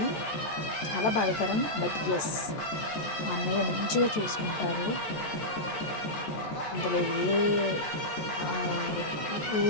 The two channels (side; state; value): right; late; 14 ms